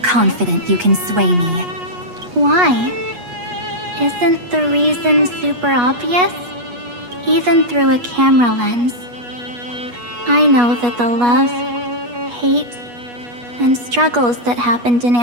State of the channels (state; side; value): late; left; 8.3 ms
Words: confident you can sway me. Why? Isn't the reason super obvious? Even through a camera lens. I know that the love, hate, and struggles that happened in